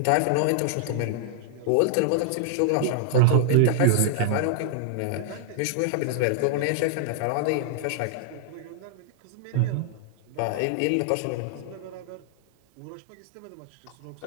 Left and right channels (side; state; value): both; different; correlation -0.01